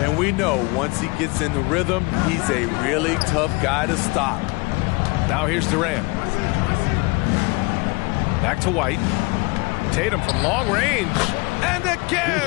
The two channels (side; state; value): right; quieter; 25.4 dB